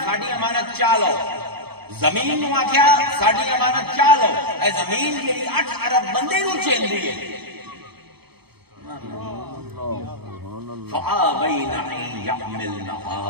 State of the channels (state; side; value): late; left; 0.97 ms